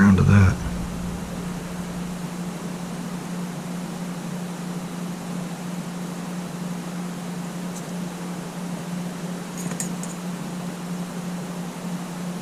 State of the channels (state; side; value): identical; both; correlation 1.00